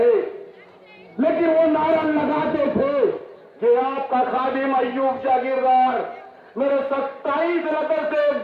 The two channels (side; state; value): both; identical; correlation 1.00